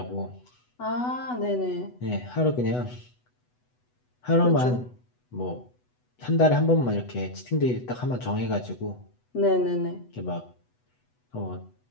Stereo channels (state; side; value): late; right; 8.1 ms